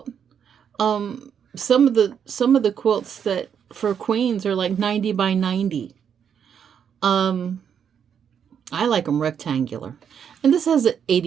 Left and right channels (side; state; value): left; quieter; 7.9 dB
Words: Some of the quilts that for queens are like 90 by 90. I like them rectangular. And this has an